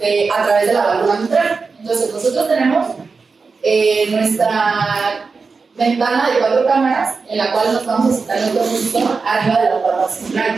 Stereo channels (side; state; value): left; quieter; 4.6 dB